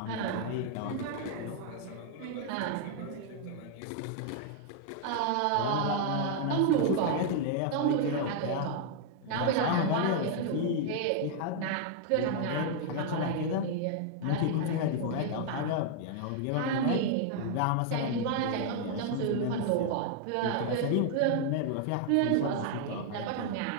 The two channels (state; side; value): different; both; correlation 0.00